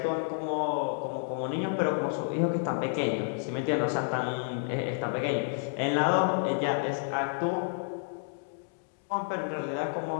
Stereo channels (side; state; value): right; silent; digital silence